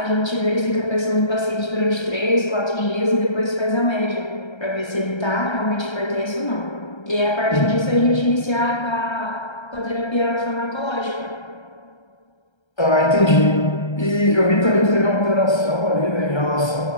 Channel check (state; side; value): late; right; 1.3 ms